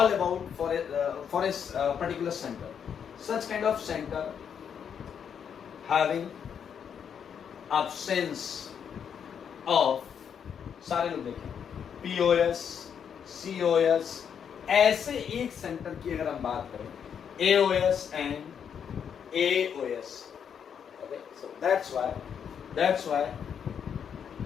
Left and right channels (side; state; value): right; quieter; 7.8 dB